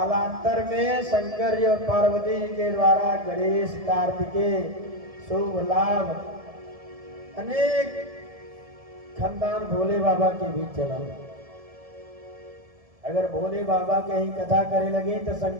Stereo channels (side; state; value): left; late; 1.7 ms